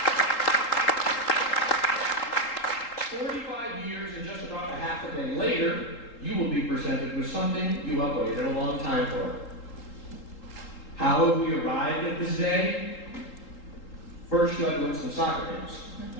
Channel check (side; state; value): right; late; 3.8 ms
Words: 45 years and just about a half a day later, you will be presented with something you have waited a long time for. How have we arrived at this day? First, you had to win some soccer games.